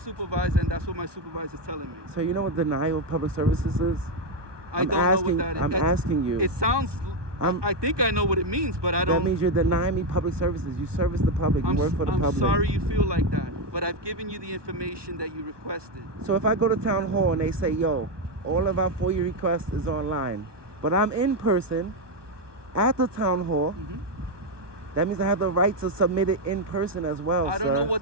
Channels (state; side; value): late; left; 1.2 ms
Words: and that's what my supervisor is telling me. So you know what denial of public services is? I I'm don't know asking- what that is. I'm asking you. It sounds. I think I know what it means, but I That don't. means you're denying me public services. You service the public. You I'm, work for the I'm public. sorry you feel like that, but I've given you the information that you requested. So if I go to town hall and they say, yo, all of our FOIA requests is online, but I'm in person at the town hall, Mhm. that means I have the right to submit it in person as well. I don't sir. know